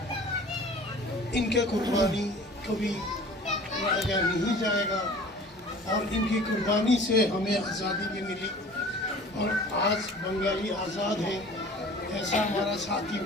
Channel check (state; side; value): normal; both; correlation 0.45